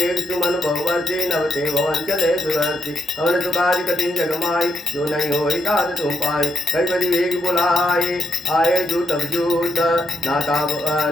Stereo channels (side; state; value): both; normal; correlation 0.80